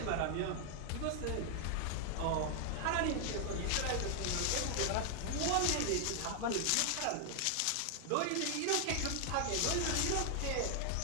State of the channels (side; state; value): both; different; correlation 0.00